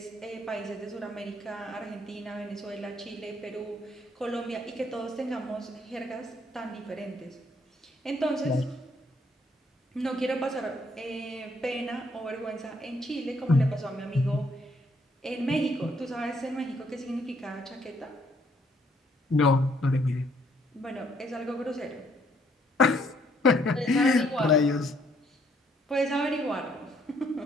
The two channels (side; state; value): both; normal; correlation 0.68